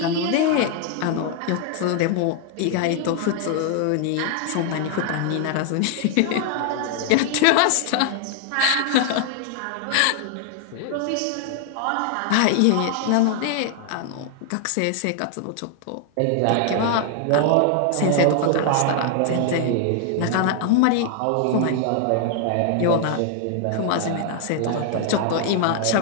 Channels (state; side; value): different; both; correlation 0.00